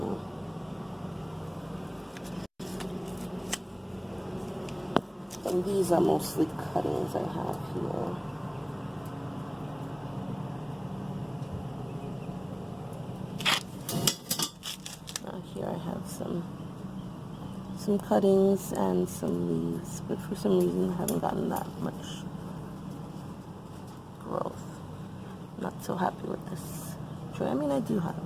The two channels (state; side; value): identical; both; correlation 1.00